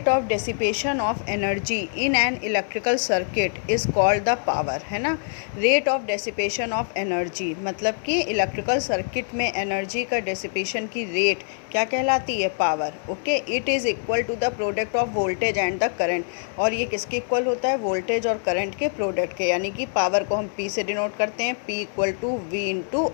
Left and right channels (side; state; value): right; silent; 62 dB below the other